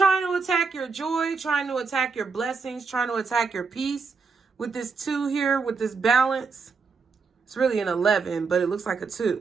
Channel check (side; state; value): left; quieter; 4.9 dB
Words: to attack your joy, trying to attack your blessings, trying to attack your peace. With this 2 here, with this balance. It's really an 11, but it looks like a